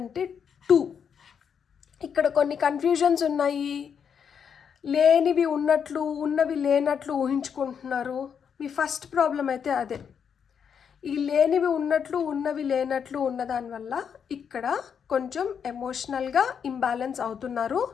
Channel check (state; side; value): quieter; right; 7.3 dB